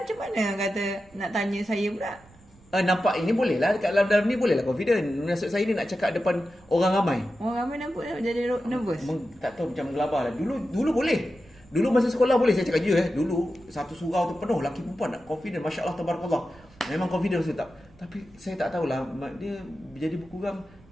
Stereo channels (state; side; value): noise; right; rumble, 26 dB below the sound